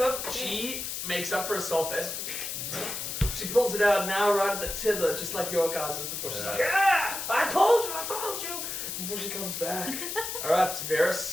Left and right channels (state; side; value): noise; left; hiss, 5 dB below the sound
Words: she makes up for herself as she pulls it out now right at the tither, just like your guys' before. She's like, ah! I told you! Before she comes back. Alright,